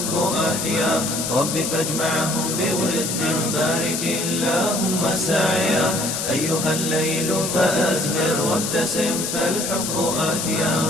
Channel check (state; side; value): noise; left; hiss, 2 dB below the sound